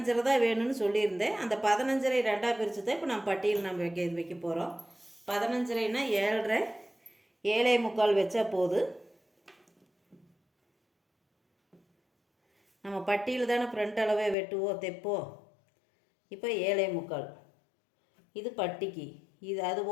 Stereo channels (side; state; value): right; drops out; at 14.4 s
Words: தான் வேணும்னு சொல்லியிருந்தேன். அந்த 15.5 2ஆக பிரித்து தான் இப்போ நம்ம பட்டியில் நம்ம வைக்க போகிறோம். 15.5னா 7.5 7.25 வச்சா போதும். நம்ம பட்டியில் தானே ஃப்ரண்ட் அளவே வெட்டுவோம் தைப்போம். இப்போ 7.25 இது பட்டிக்கு. இது அது